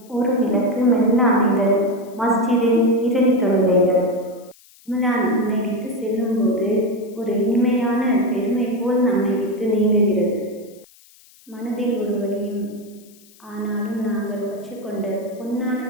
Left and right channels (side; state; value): left; noise; hiss, 27 dB below the sound